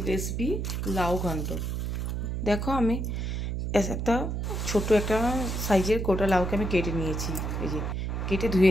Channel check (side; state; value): right; noise; hum, 2 dB below the sound